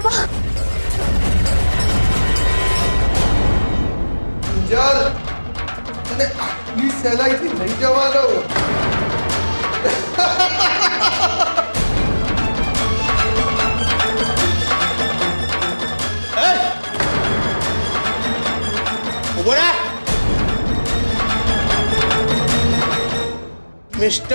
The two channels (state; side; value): inverted; both; correlation -1.00